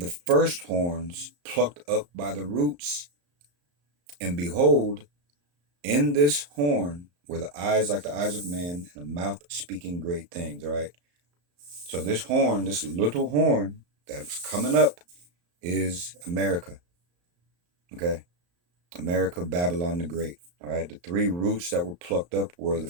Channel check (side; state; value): left; late; 34 ms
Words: first horns plucked up by the roots. And behold, in this horn were the eyes like the eyes of man, and a mouth speaking great things. All right. So this horn, this little horn that's coming up, is America. Okay. America, Babylon the Great. All right. The 3 roots that were plucked up were the